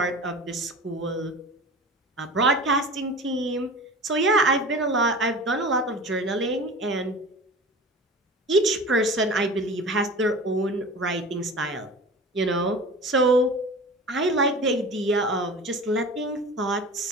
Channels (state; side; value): normal; both; correlation 0.36